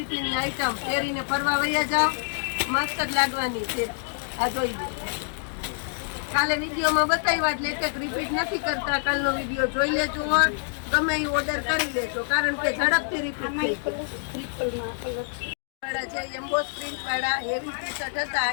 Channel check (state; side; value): silent; right; digital silence